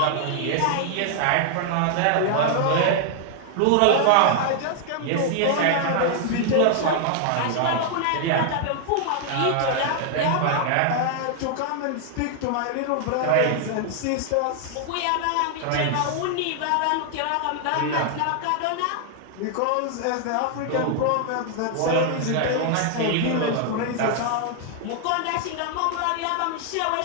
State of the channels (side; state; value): both; different; correlation 0.00